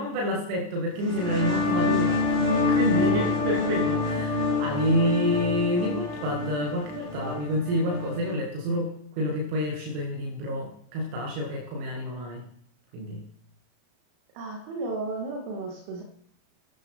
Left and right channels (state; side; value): late; left; 34 ms